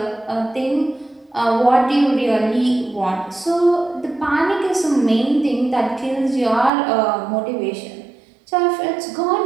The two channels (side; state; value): left; drops out; at 6.7 s